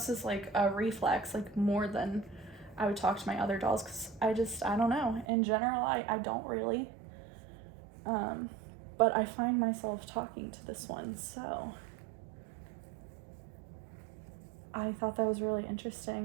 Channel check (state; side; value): drops out; left; at 5.2 s